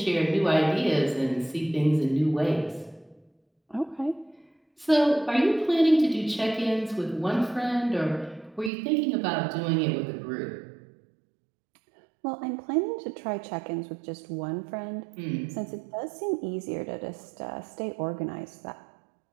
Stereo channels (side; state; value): left; drops out; at 8.7 s